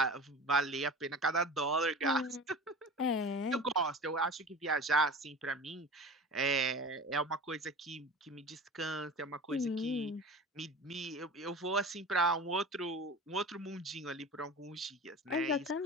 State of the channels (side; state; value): both; normal; correlation 0.35